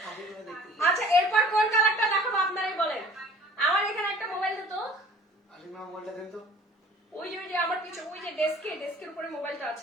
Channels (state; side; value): normal; both; correlation 0.50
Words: আচ্ছা এরপর কোন কালারটা দেখাবো আপনারাই বলেন। আমার এখানে একটা মোবাইল দিত। মোবাইলটা দেন তো। ওই যে আমার কিছু ওই যে ডেস্কের উপরে মোবাইলটা